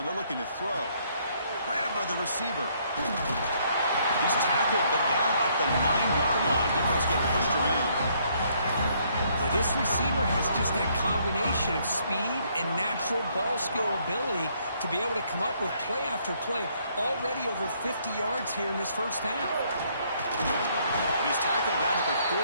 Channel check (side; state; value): both; inverted; correlation -0.68